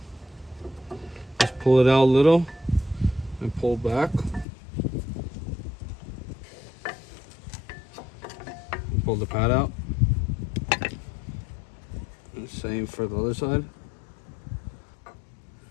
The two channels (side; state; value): right; drops out; at 4.5 s